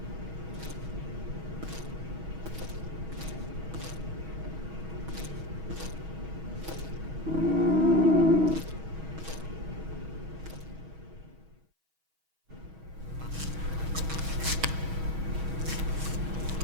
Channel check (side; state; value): left; late; 6.3 ms